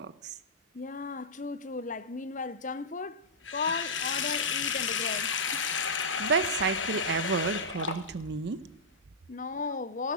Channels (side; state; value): both; normal; correlation -0.12